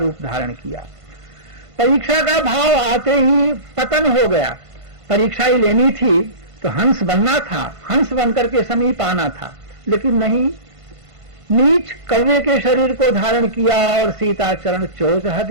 धारण किया। परीक्षा का भाव आते ही पतन हो गया। परीक्षा ही लेनी थी तो हंस बनना था, हंस बनकर के समीप आना था, लेकिन नहीं, नीच कौवे के शरीर को धारण किया और सीता चरण चोच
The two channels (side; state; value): left; late; 1.5 ms